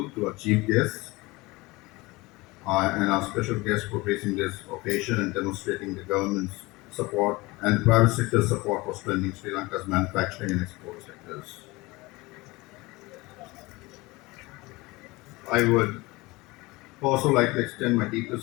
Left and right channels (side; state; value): right; quieter; 22.6 dB